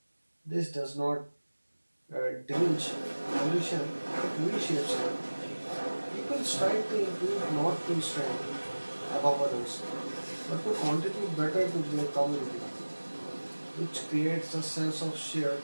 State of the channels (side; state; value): both; inverted; correlation -1.00